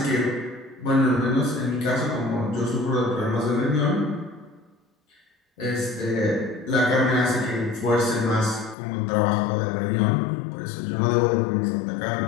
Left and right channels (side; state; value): right; drops out; at 8.8 s